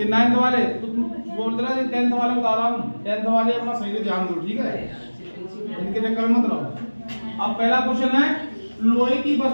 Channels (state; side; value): inverted; both; correlation -1.00